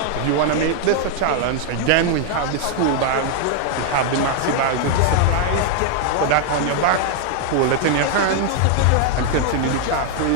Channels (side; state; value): both; different; correlation 0.00